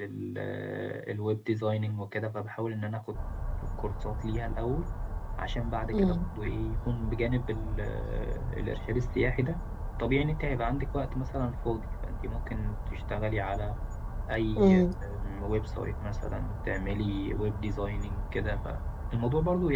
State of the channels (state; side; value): identical; both; correlation 1.00